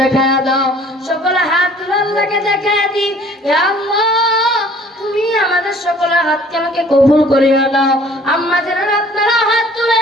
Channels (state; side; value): normal; both; correlation 0.53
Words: দেখায়া দাও। সকলে হাত তুলে আল্লাহকে দেখায়া দি, হে আল্লাহ তুমি আমাদের সকলের হাতকে আমাকে কবুল করিয়া নাও। আম্মা যারা আপনারা হাত